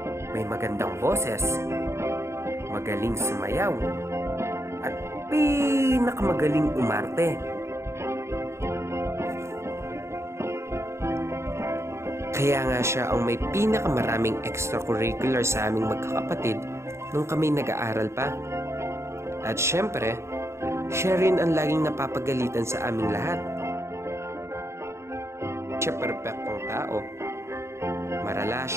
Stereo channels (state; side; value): late; left; 0.13 ms